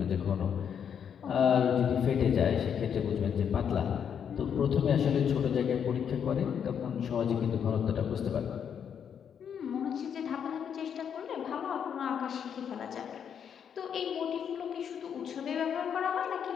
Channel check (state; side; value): quieter; right; 8.0 dB